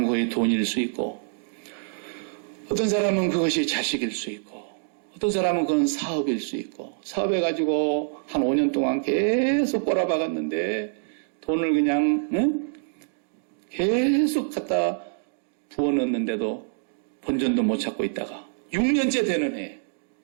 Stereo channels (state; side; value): silent; left; digital silence